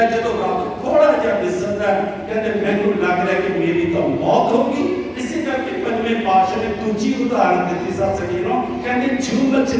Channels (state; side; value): identical; both; correlation 1.00